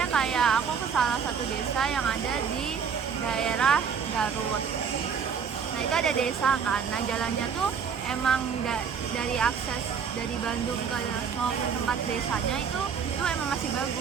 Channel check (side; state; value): left; quieter; 6.6 dB